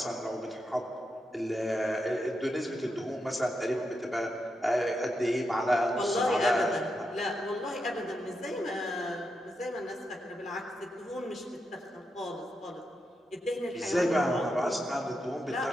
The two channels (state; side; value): normal; both; correlation 0.85